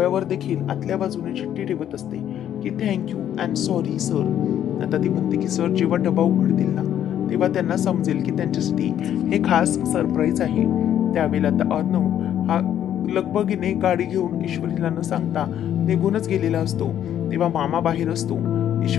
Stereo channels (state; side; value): quieter; right; 10.5 dB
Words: देखील आतल्या बाजूने चिठ्ठी ठेवत असते की थँक्यू अँड सॉरी सर. आता ती म्हणते की सर जेव्हा डबा उघडतील ना तेव्हा त्यांना समजेल की त्यांच्यासाठी हे खास सरप्राईज आहे. त्यावेळेला आता अर्णव हा लगबगीने गाडी घेऊन ईश्वरीला न सांगता निघूनच गेलेला असतो. तेव्हा मामा बाहेर असतो.